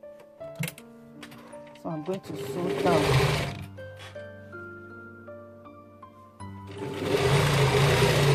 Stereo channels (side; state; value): both; identical; correlation 1.00